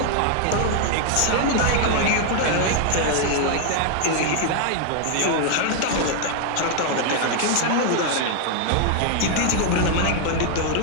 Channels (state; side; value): different; both; correlation 0.00